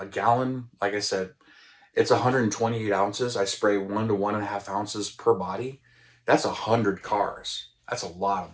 gallon, like I said, it's 128 ounces. I spray 1 to 1.5 ounces per body. That's 100 cars. That's a lot of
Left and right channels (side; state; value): both; identical; correlation 1.00